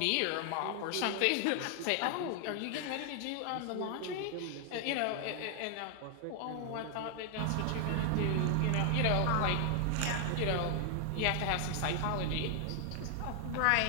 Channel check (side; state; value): both; different; correlation 0.00